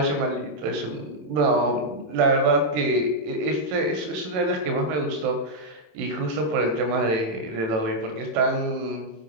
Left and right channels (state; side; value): late; left; 27 ms